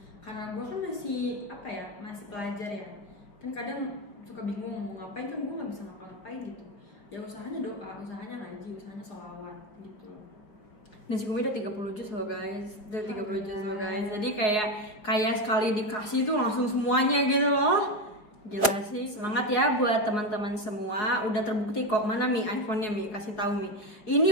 karena gue kan masih apa ya, masih pelajar ya. Kan kadang suka bingung mau ngapain, kan gue nggak bisa ngapa-ngapain gitu. Ya usahanya doa, usahanya ngaji, usahanya sholawat gitu loh. Nah si Kumi udah 30 juz loh guys, jadi kayak sekali dikasih tuh langsung semuanya gitu loh. Gila sih, semangat ya buat teman-teman semua. Udah terbukti kok. Mana Mi iPhone-nya Mi, kasih tahu Mi.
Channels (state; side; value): late; right; 4.7 ms